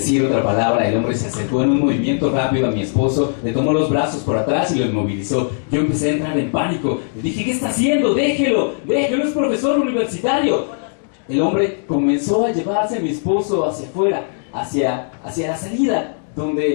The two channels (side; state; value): right; silent; digital silence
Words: otra palabra, el hombre se acercó en un movimiento rápido a mi esposo, le tomó los brazos por atrás y lo inmovilizó. Yo empecé a entrar en pánico. Le dije: ¿qué está haciendo? Déjelo, es profesor universitario. El hombre comenzó a llevarse a mi esposo hacia afuera, hacia la salida,